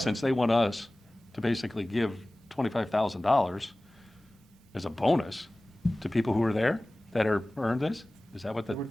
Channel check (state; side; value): normal; both; correlation 0.98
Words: they want us to basically give $25,000 as a bonus to people who are there that are earned this? Is that what the It would